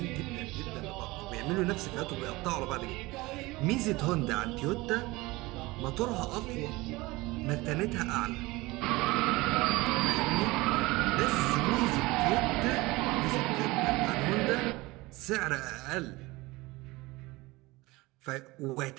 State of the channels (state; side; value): quieter; left; 21.5 dB